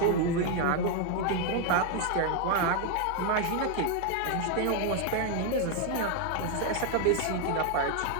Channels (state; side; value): different; both; correlation 0.00